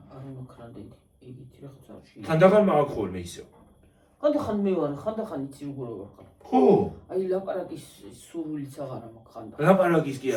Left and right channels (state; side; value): identical; both; correlation 1.00